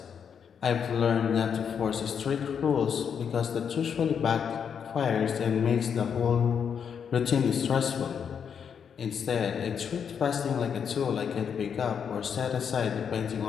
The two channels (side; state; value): right; quieter; 7.3 dB